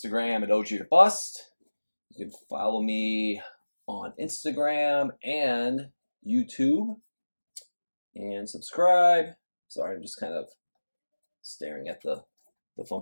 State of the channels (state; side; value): inverted; both; correlation -1.00